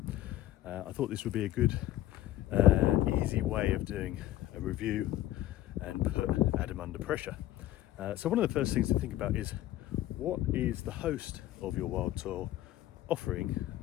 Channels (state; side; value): quieter; right; 14.4 dB